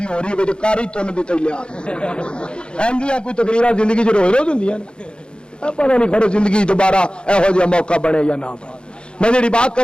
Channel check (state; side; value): late; right; 0.053 ms